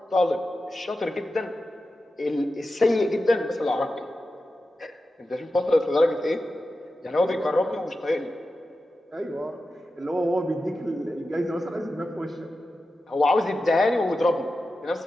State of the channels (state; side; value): normal; both; correlation 0.92